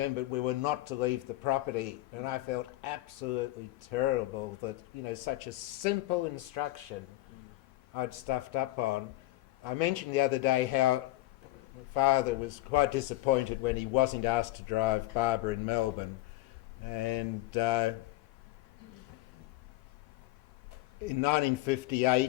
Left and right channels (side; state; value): right; quieter; 17.4 dB